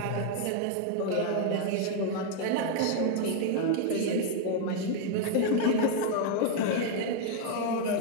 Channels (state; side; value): different; both; correlation 0.00